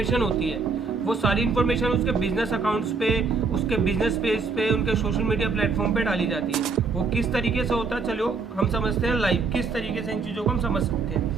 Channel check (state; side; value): quieter; left; 4.5 dB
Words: होती है वो सारी इन्फॉर्मेशन उसके बिजनेस अकाउंट्स पे, उसके बिजनेस पेज पे, उनके सोशल मीडिया प्लेटफॉर्म पे डाली जाती है। वो किस तरीके से होता है, चलो हम समझते हैं लाइव किस तरीके से इन चीज़ों को हम समझ सकते